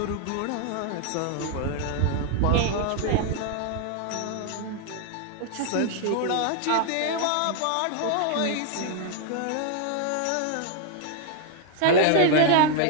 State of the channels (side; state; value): both; different; correlation 0.00